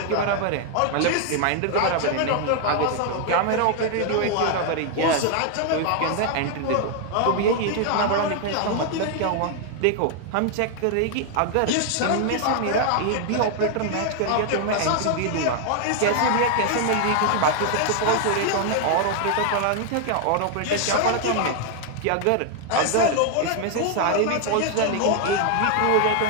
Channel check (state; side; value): different; both; correlation 0.00